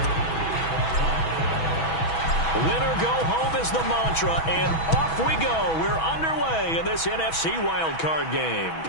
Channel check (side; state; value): right; late; 6.2 ms